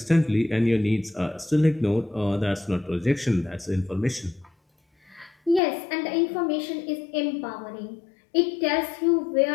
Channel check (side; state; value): right; drops out; at 5.6 s